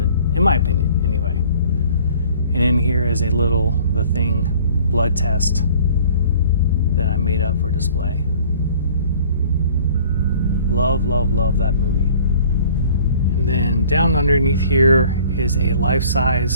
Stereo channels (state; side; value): inverted; both; correlation -0.52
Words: in my opinion, anyway. And in here is a little The Thing blood test that I made up for display. Love, love, love that movie. And then down underneath here is a